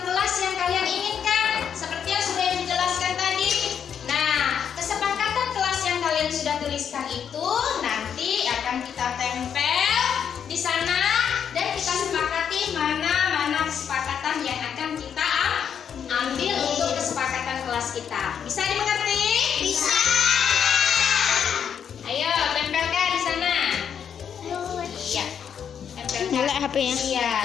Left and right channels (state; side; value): quieter; right; 8.0 dB